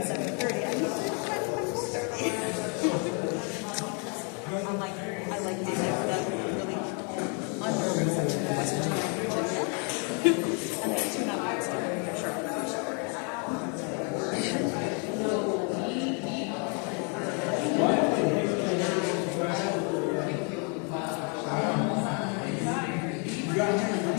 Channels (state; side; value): quieter; right; 37.2 dB